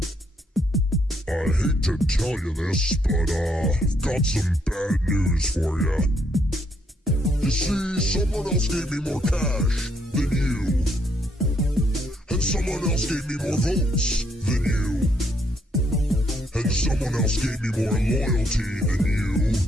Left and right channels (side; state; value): both; normal; correlation 0.72